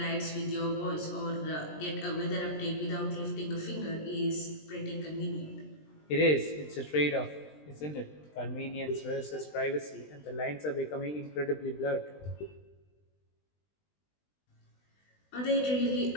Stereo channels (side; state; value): right; late; 20 ms